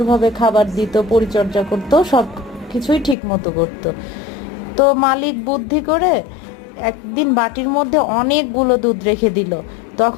খাবার দিত, পরিচর্যা করতো, সব কিছুই ঠিক মতো করতো। তো মালিক বুদ্ধি করে একদিন বাটির মধ্যে অনেকগুলো দুধ রেখে দিল।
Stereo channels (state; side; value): drops out; right; at 3.2 s